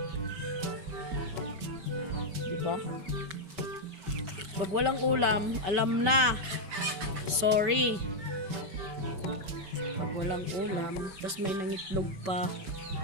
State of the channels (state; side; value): late; left; 5.1 ms